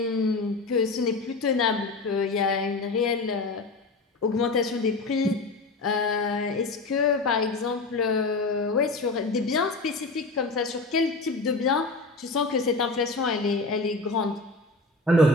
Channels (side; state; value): right; quieter; 3.3 dB